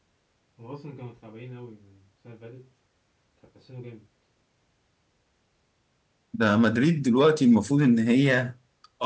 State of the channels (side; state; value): both; identical; correlation 1.00